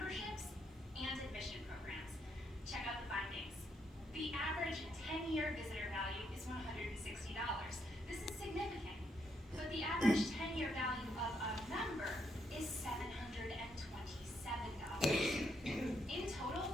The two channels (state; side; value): normal; both; correlation 0.76